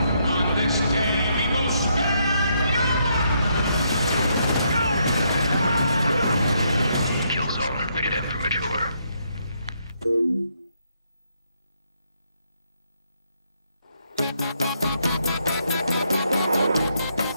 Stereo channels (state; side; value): inverted; both; correlation -0.75